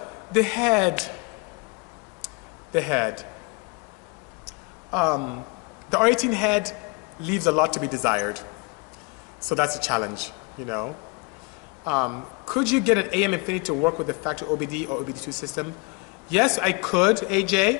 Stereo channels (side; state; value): right; quieter; 29.8 dB